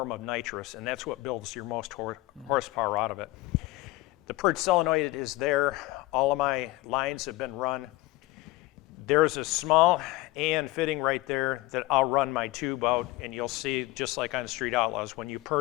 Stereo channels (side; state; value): right; quieter; 19.6 dB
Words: of nitrous, and that's what builds your most horsepower out of it. The purge solenoid is there. All of my lines have been run. There's a small AN fitting right there that I'll run my tube out, and you'll see, just like on Street Outlaws, when you